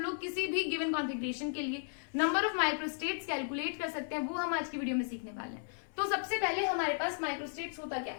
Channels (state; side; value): silent; right; 55 dB below the other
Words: किसी भी गिवन कॉन्फ़िगरेशन के लिए नंबर ऑफ माइक्रोस्टेट्स कैलकुलेट कर सकते हैं, वो हम आज की वीडियो में सीखने वाले हैं। तो सबसे पहले हमारे पास माइक्रोस्टेट्स होता क्या